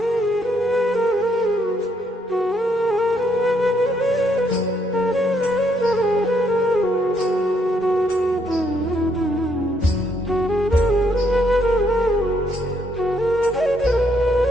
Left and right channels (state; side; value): normal; both; correlation 0.72